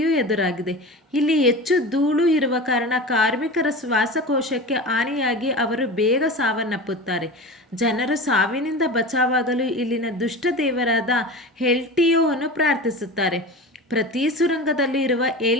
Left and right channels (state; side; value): normal; both; correlation 0.31